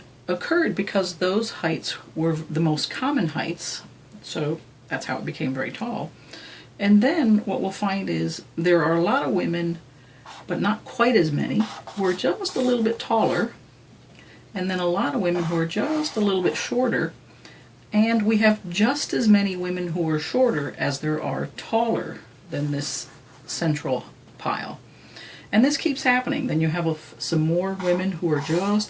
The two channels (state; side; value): identical; both; correlation 1.00